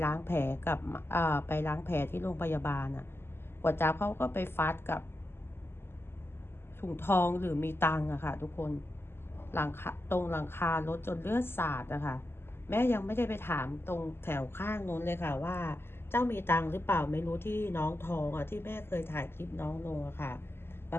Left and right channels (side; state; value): right; late; 0.11 ms